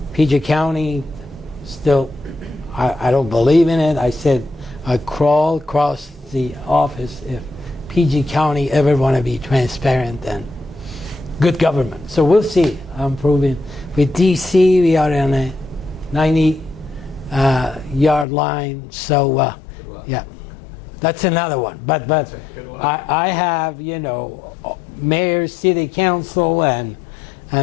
PG County, still, I don't believe in it. I said I'd crawl across the office if PG County ever want to be transparent and good government. So we'll see. I'm proving. With DC, we are on a 90-yard line. So yeah, that's another one. But I have mayor, city council, and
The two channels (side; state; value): right; drops out; at 18.2 s